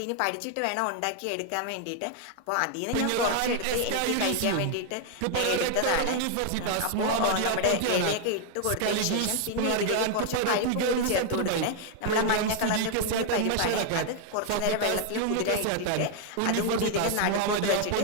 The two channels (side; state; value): both; different; correlation 0.00